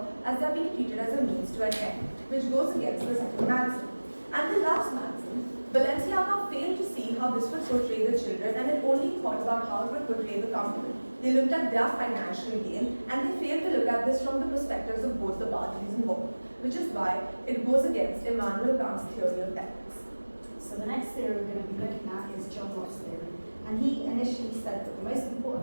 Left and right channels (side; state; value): both; inverted; correlation -1.00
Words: as they are being treated as a means to an end, which goes against the second maxim. And the last maxim, Balenciaga failed to see how this would portray the children, and it only thought about how it would portray the company. They looked at their financial gain, and they failed to look at this from the perspectives of both the parties involved, which is why it goes against Immanuel Kant's theory of ethics. So the next theory we're going to be looking at is John Locke's theory. And he initially said that the most